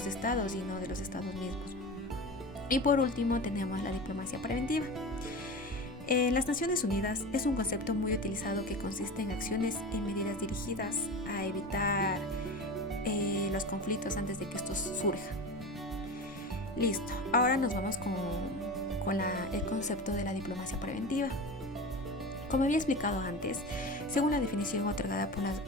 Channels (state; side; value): normal; both; correlation 0.29